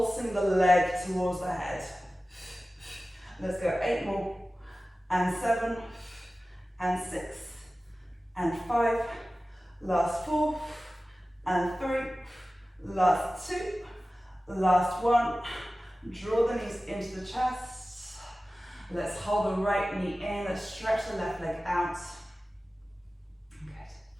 the leg towards the head. Let's go 8 more. And 7. And 6, and 5, last 4, and 3, last 2, last 1. Draw the knees into the chest. Let's hold the right knee in. Let's stretch the left leg out. Good.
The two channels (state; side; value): normal; both; correlation 0.96